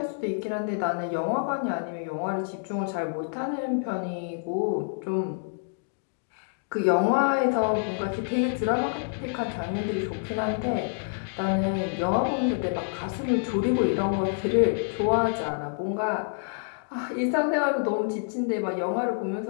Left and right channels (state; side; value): silent; right; digital silence